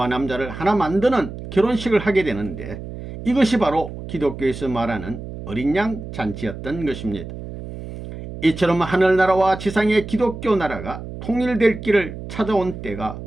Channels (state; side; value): noise; right; hum, 10 dB below the sound